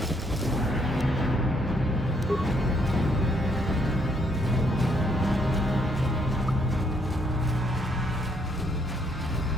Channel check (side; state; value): both; normal; correlation 0.71